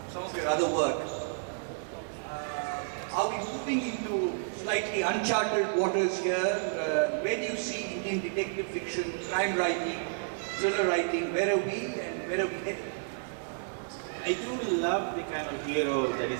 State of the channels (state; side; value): silent; left; digital silence